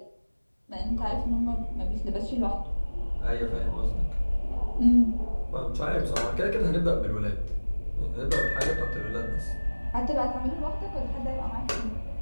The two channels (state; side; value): inverted; both; correlation -1.00